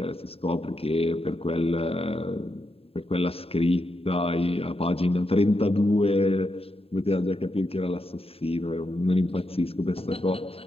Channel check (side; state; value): right; late; 0.28 ms